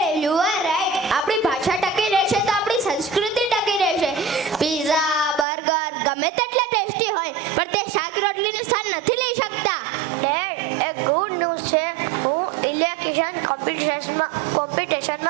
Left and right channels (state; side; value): drops out; left; at 5.5 s